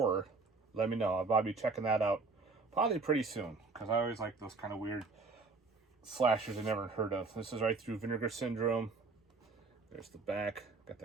let me know. I'll probably be checking that out probably pretty soon, because I always like those kind of weird slashers I never heard of. This is right through Vinegar Syndrome. There's the back. Got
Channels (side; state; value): left; quieter; 4.0 dB